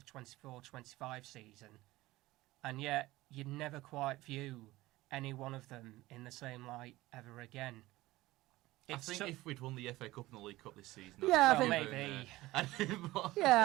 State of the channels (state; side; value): quieter; left; 18.2 dB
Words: 24-25 season. And yet, you'd never quite view any one of them in the same light ever again. I think if we'd won the FA Cup and the League Cup this season, yeah, I think maybe.